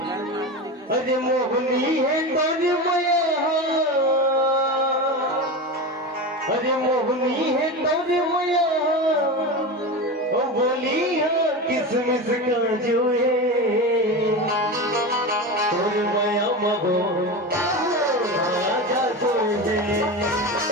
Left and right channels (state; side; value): normal; both; correlation 0.23